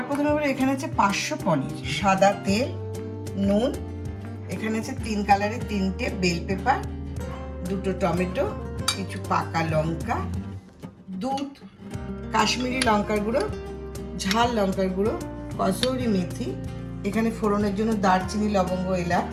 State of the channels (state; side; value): identical; both; correlation 1.00